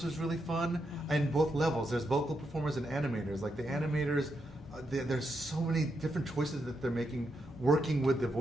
was really fun, and both levels. There's vocal performers and animators. Like the animators, there's so many different choices that they're making, working with the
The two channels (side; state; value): both; normal; correlation 0.82